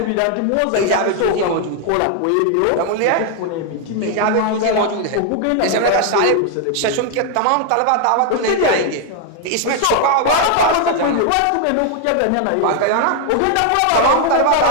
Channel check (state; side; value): different; both; correlation 0.00